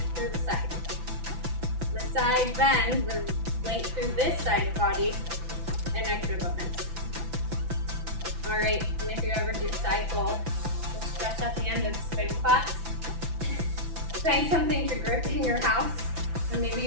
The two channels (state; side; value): late; left; 5.9 ms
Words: through the side. The side bend, the length through this side of the body, an extra bonus. All right, and if you ever do cycle, we'll stretch at the end of the spin class. Find something to grip in your house, and maybe